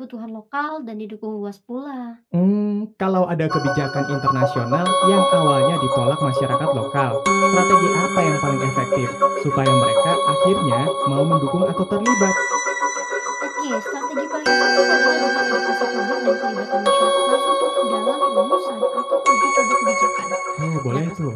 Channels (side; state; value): both; identical; correlation 1.00